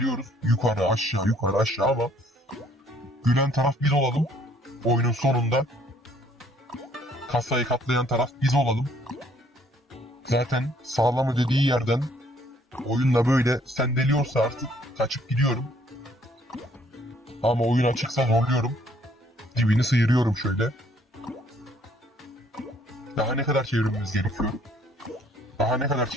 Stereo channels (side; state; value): both; normal; correlation 0.63